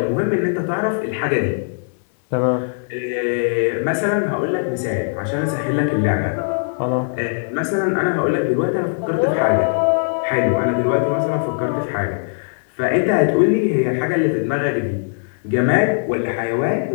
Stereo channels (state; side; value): silent; right; digital silence